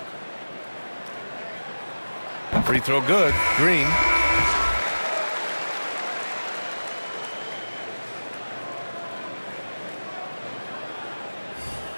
Free throw good. Green.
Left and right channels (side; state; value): both; inverted; correlation -1.00